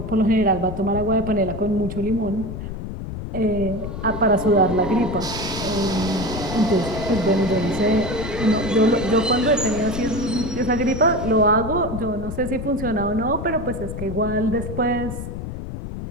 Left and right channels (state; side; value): noise; left; rumble, 7 dB below the sound